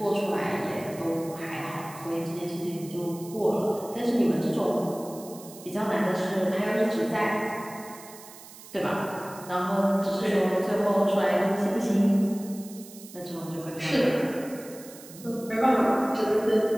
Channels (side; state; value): right; noise; hiss, 18 dB below the sound